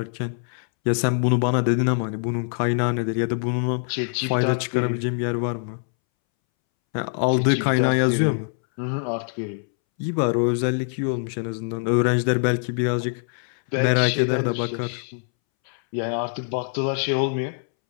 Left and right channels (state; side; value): silent; right; 63 dB below the other